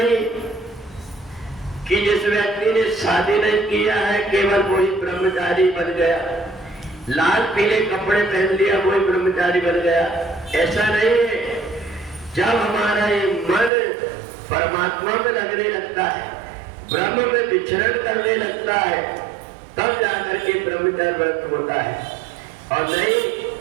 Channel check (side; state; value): left; drops out; at 13.7 s